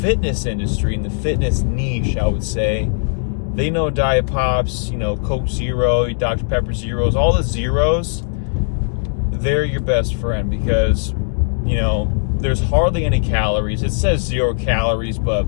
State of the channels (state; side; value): silent; right; digital silence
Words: industry, in the fitness niche, I would say, they know Diet Pops, Coke Zero, Dr. Pepper Zeros, all the zeros, they're your best friend because, there's hardly any calories. It says 0 calories, but